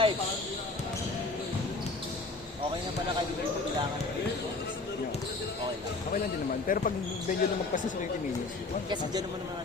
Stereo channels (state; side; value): quieter; right; 3.5 dB